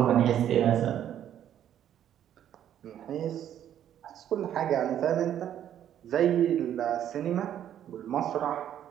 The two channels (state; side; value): quieter; left; 10.5 dB